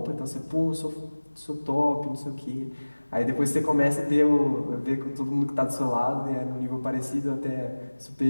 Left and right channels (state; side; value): inverted; both; correlation -1.00